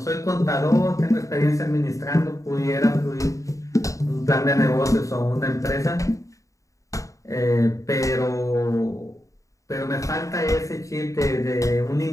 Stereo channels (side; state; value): right; late; 0.16 ms